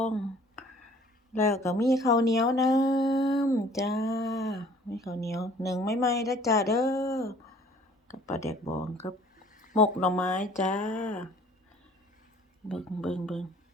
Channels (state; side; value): normal; both; correlation 0.53